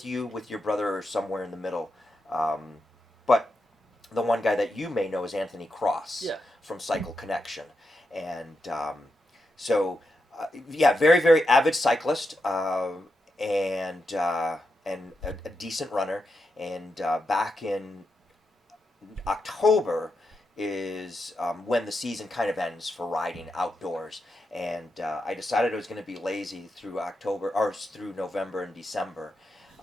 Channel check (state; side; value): normal; both; correlation 0.86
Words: you, with your brother, or somewhere in the middle. But the one guy that you may know is Anthony Cross from Cycle Connection. And very, very avid cyclist, and a decent runner. And back in October is when the season kind of ends for riding outdoors. And I decided I was going to be lazy through November and December.